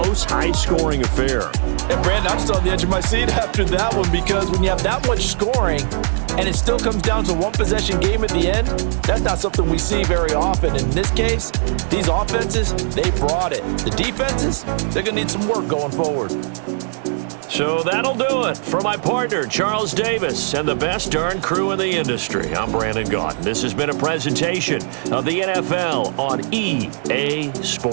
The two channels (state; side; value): silent; left; 66 dB below the other